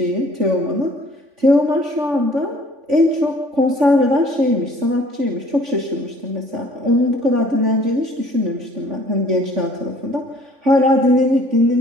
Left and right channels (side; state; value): left; late; 3.5 ms